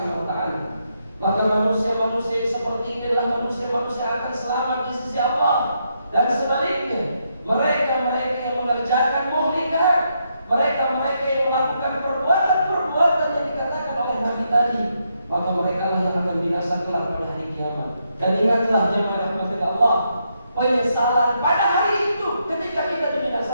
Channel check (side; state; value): both; inverted; correlation -0.79